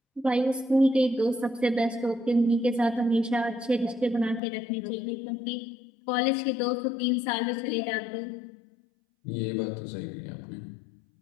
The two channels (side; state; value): right; drops out; at 4.4 s